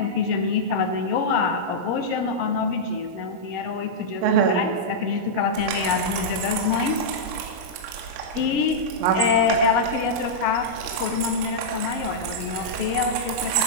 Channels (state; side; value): late; left; 17 ms